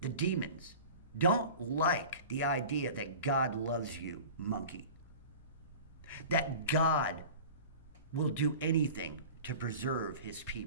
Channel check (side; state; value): both; inverted; correlation -0.38